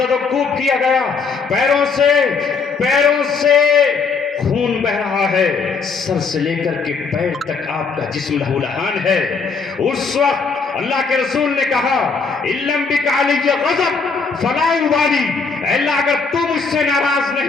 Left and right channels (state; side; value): quieter; right; 4.9 dB